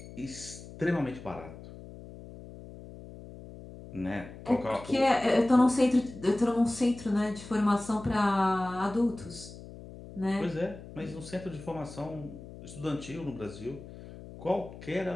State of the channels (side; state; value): left; noise; hum, 15 dB below the sound